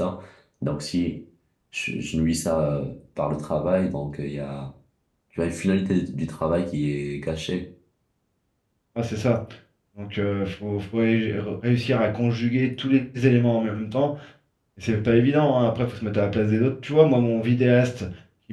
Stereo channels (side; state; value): both; identical; correlation 1.00